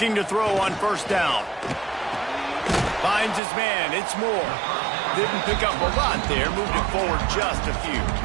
to throw on 1st down. Finds his man. It's Moore. Didn't pick up a lot there. Moved it forward just a few.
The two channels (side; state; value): left; drops out; at 3.4 s